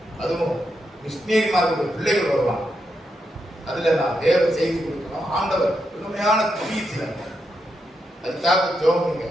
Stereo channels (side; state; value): both; normal; correlation 0.83